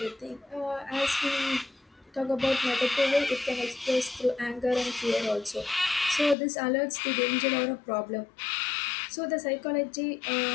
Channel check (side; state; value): right; drops out; at 6.4 s